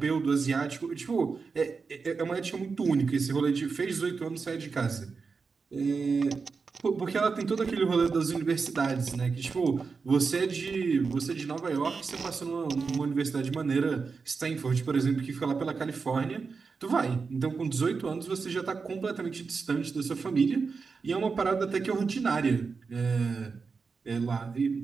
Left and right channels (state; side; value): quieter; left; 4.9 dB